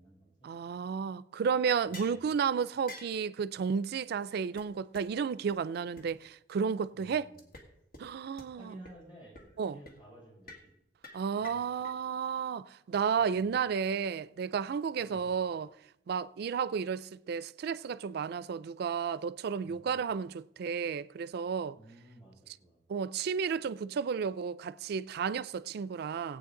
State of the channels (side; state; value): left; quieter; 6.1 dB